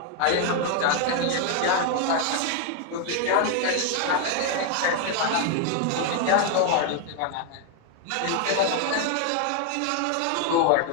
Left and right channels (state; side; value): different; both; correlation 0.00